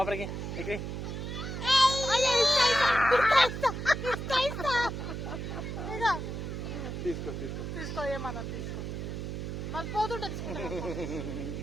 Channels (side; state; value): right; noise; hum, 5 dB below the sound